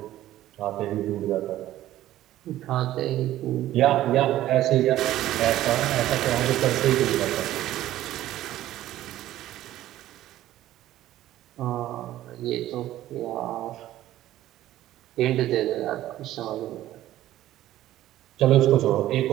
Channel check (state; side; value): quieter; left; 14.0 dB